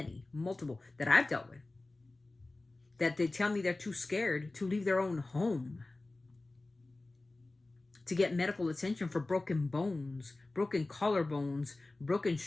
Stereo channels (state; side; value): quieter; right; 3.0 dB